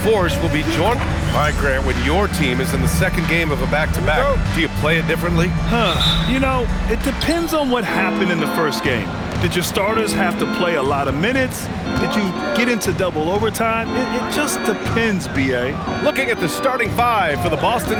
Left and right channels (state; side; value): identical; both; correlation 1.00